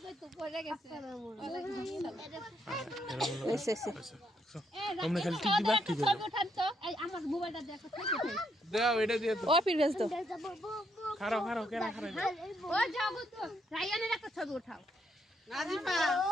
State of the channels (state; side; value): normal; both; correlation 0.75